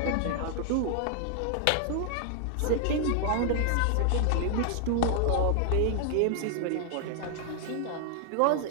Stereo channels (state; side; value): different; both; correlation 0.00